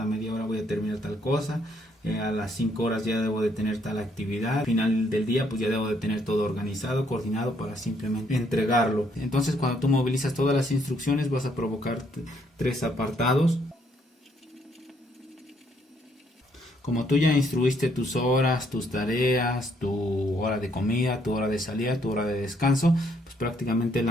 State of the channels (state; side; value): normal; both; correlation 0.70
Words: media hora voy a terminar tal cosa, a las 5 horas ya debo de tener tal actividad, al final del día pues ya debo de tener todo organizado, coordinado para simplemente entregarlo. Entonces cuando tú movilizas todas las instrucciones vas a provocar 3 apartados. Como tú ya instruiste tus horas, tus tareas, tu hora de comida, tu hora de salida, tu hora de descanso, pues prácticamente